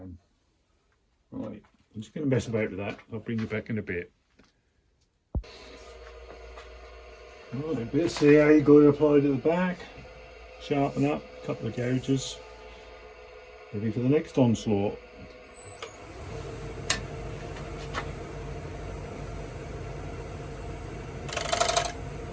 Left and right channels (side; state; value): both; identical; correlation 1.00